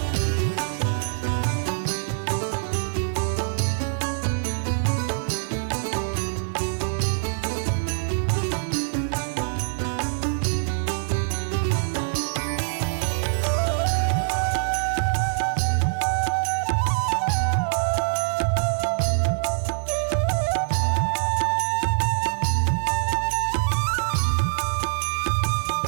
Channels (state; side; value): silent; left; digital silence